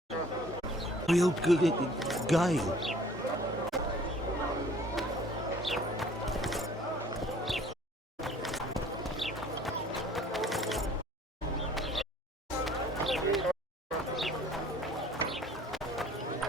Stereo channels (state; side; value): normal; both; correlation 0.53